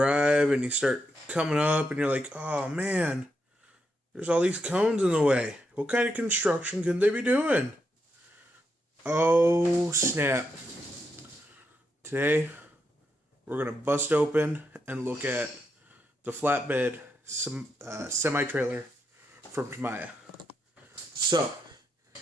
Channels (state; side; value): normal; both; correlation 0.82